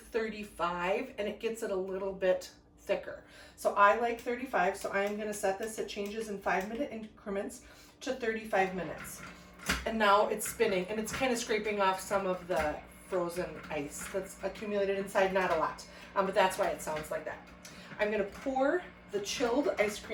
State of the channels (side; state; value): both; identical; correlation 1.00